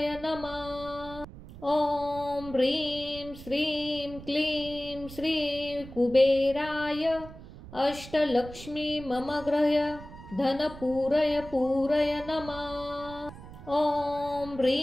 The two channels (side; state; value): right; noise; rumble, 15 dB below the sound